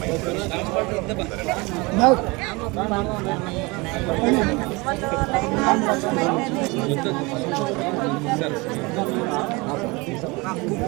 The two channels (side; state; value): left; quieter; 25.5 dB